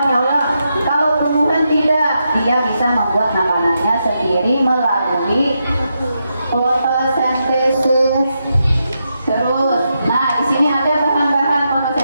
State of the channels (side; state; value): both; inverted; correlation -0.84